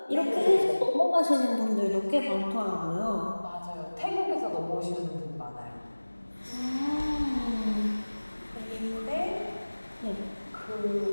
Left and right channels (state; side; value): inverted; both; correlation -1.00